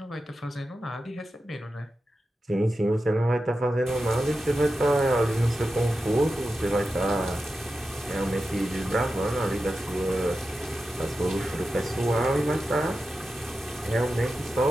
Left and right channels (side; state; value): both; normal; correlation 0.91